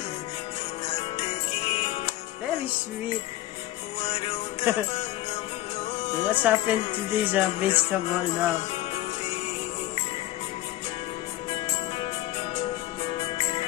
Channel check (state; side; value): quieter; right; 15.7 dB